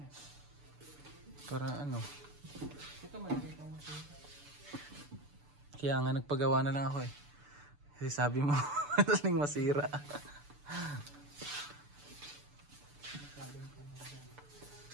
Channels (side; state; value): left; late; 6.9 ms